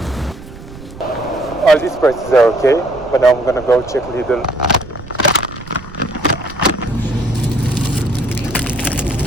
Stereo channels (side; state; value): right; noise; rumble, 16 dB below the sound